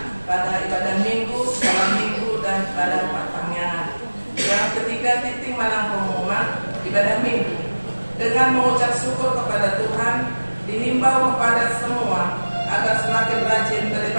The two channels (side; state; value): both; inverted; correlation -1.00